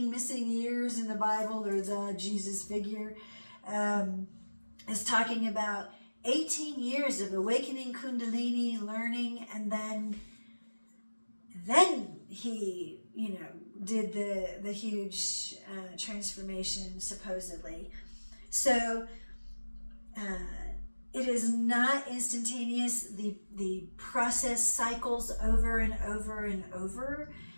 missing years in the Bible, or the Jesus figure, is talking about 18 years of awakening Kundalini, learning, and then he, did the huge transformation, supposedly. So it is not instantaneous. The process cycles over and over and over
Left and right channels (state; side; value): inverted; both; correlation -1.00